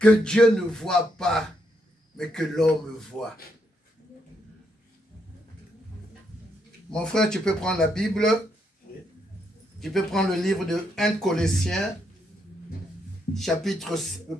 Dieu ne voit pas, mais que l'homme voit? Mon frère, tu peux prendre la Bible. Tu peux prendre le livre de 1 Colossiens,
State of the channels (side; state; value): both; normal; correlation 0.77